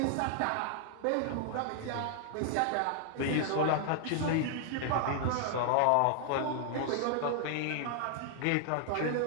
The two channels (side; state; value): both; different; correlation 0.00